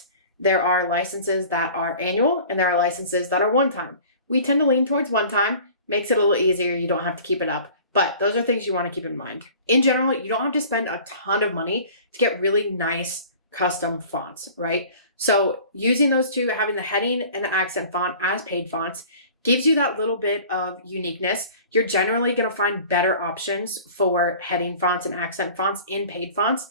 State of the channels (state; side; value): inverted; both; correlation -0.45